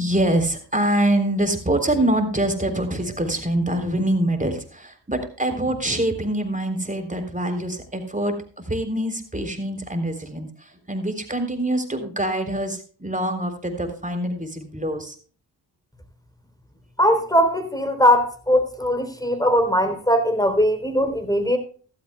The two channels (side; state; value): both; normal; correlation 0.52